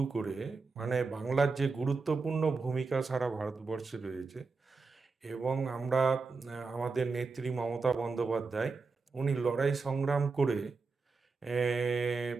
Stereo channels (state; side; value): quieter; left; 4.3 dB